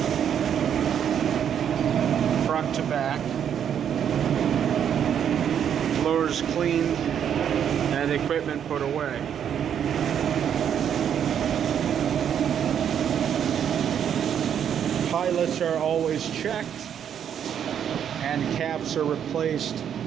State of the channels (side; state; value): left; quieter; 8.8 dB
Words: front to back. Floors cleaned and equipment put away. Pilots are always checked and caps are replaced